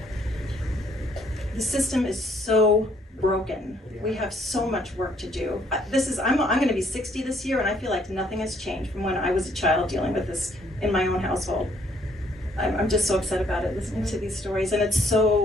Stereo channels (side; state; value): both; normal; correlation 0.66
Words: The system is so broken. We have so much work to do. I'm going to be 60 this year, and I feel like nothing has changed from when I was a child dealing with this in my own household. I'm just so upset about it, listening to these stories, and it's